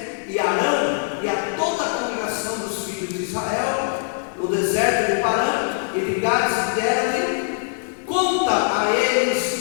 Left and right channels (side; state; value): right; silent; 64 dB below the other